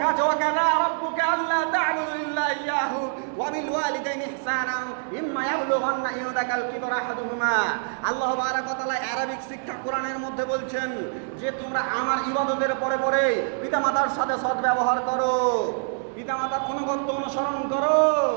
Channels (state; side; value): silent; left; 61 dB below the other